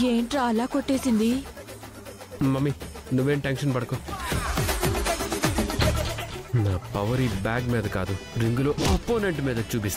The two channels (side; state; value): both; identical; correlation 1.00